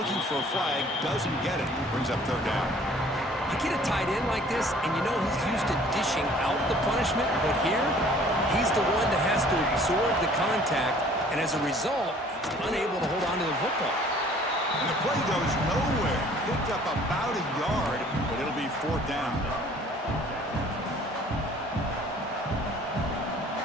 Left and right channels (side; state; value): both; normal; correlation 0.54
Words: for a flag, doesn't get it. Brings up third down. You get a tight end like this, and you know he's used to dishing out the punishment, but here, he's the one that has to absorb the contact, and as a result, he's unable to hold on to the football. And the play goes nowhere. Picked up about a yard, but it'll be fourth down.